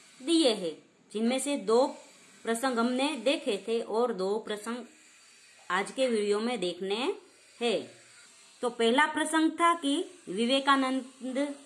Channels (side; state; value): both; identical; correlation 1.00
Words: दिए हैं, जिनमें से 2 प्रसंग हमने देखे थे और 2 प्रसंग आज के वीडियो में देखने हैं। तो पहला प्रसंग था कि विवेकानंद